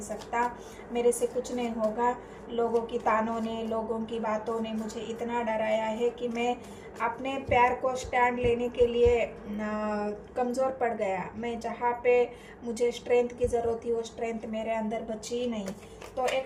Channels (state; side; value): identical; both; correlation 1.00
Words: सकता, मेरे से कुछ नहीं होगा, लोगों की तानों ने, लोगों की बातों ने मुझे इतना डराया है कि मैं अपने प्यार को स्टैंड लेने के लिए कमज़ोर पड़ गया। मैं जहाँ पे मुझे स्ट्रेंथ की ज़रूरत थी वो स्ट्रेंथ मेरे अंदर बची ही नहीं। तो